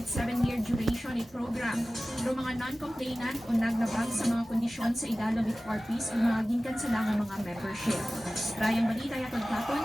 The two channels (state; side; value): normal; both; correlation 0.96